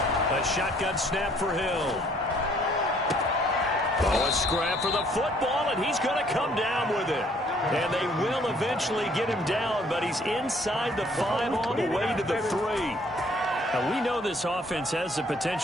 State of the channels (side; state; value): both; normal; correlation 0.61